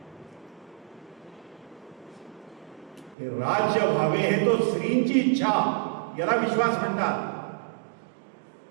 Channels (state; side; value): drops out; left; at 3.2 s